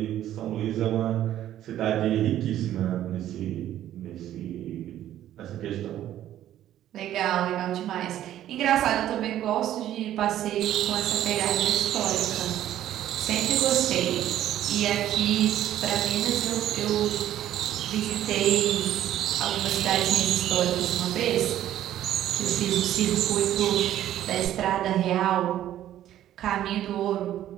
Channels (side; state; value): left; quieter; 12.2 dB